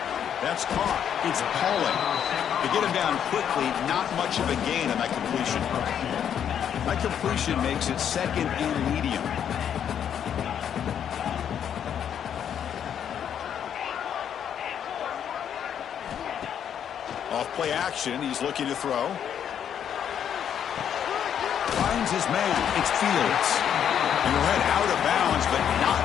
That's caught. It's Pauling. To get him down quickly, not much of a gain on that completion. That completion makes it 2nd and medium. Off play action, he's looking to throw. Finds his man. It's Fields. And he'll head out of bounds, but not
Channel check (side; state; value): right; quieter; 8.9 dB